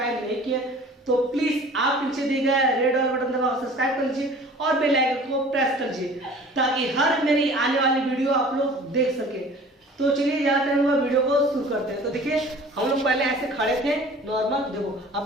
नहीं किया तो प्लीज आप नीचे दिए गए रेड वाला बटन दबाकर सब्सक्राइब कर लीजिए और बेल आइकन को प्रेस कर लीजिए ताकि हर मेरी आने वाली वीडियो आप लोग देख सके। तो चलिए ज्यादा टाइम हुआ, वीडियो को शुरू करते हैं। तो देखिए हम लोग पहले ऐसे खड़े थे नॉर्मल, देखो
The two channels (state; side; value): normal; both; correlation 0.46